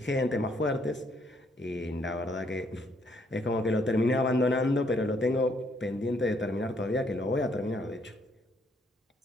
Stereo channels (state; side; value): normal; both; correlation 0.70